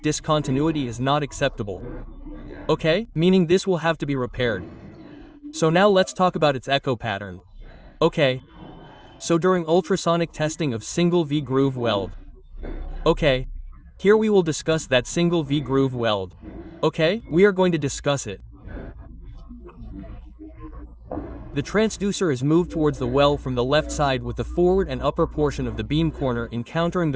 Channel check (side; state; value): both; identical; correlation 1.00